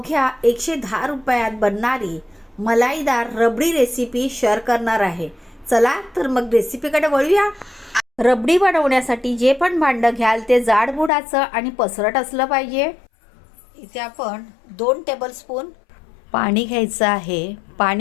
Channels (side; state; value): right; drops out; at 11.1 s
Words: 110 रुपयात बनणारी मलाईदार रबडी रेसिपी शेअर करणार आहे। चला तर मग रेसिपीकडे वळूया। रबडी बनवण्यासाठी जे पण भांडं घ्याल ते जाडबुडाचं आणि पसरट असलं पाहिजे। इथे आपण 2 टेबलस्पून पाणी घ्यायचं आहे।